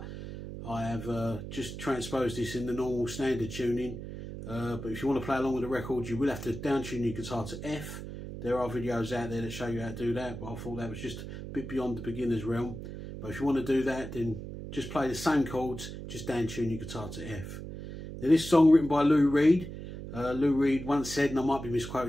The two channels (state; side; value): noise; right; hum, 9 dB below the sound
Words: I have just transposed this in the normal standard tuning. But if you want to play along with the record, you will have to down tune your guitar to F. There are videos out there that show you how to do that, but I thought that was just a bit beyond the beginner's realm. But if you want to do that, then just play the same chords, just down tune your guitar to F. Now this song written by Lou Reed. Lou Reed once said, and I might be